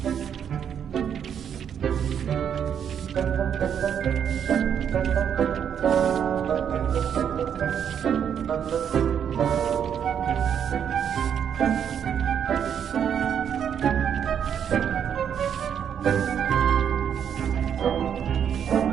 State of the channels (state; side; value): quieter; left; 8.4 dB